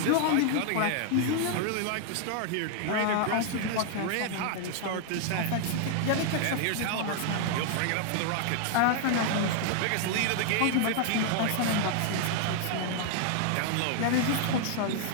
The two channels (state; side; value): different; both; correlation 0.00